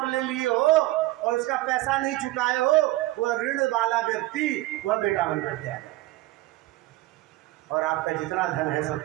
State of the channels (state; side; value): quieter; left; 18.1 dB